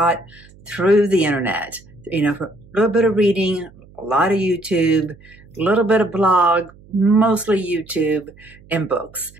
through the internet, for a little bit of reading, a lot of YouTube, a little bit of blog, mostly YouTube and books.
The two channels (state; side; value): noise; right; hum, 25 dB below the sound